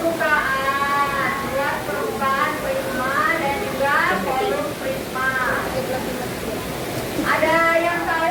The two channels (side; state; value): both; identical; correlation 1.00